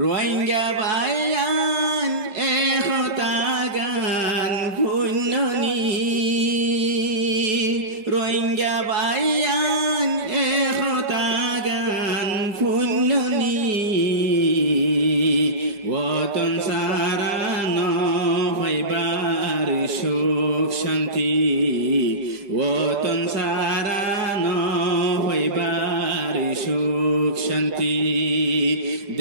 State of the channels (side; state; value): left; late; 4.7 ms